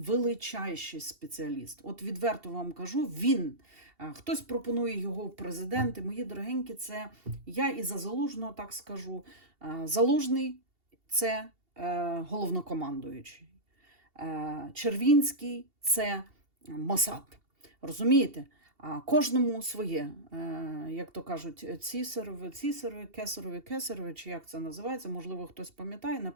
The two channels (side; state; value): left; late; 2.8 ms